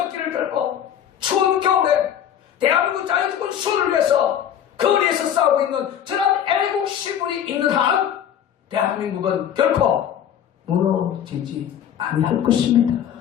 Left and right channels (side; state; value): right; quieter; 9.6 dB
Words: 들고 추운 겨울에 대한민국 자유주권 수호를 위해서 거리에서 싸우고 있는 저런 애국 시분이 있는 한 대한민국은 결코 무너지지 아니할 것입니다.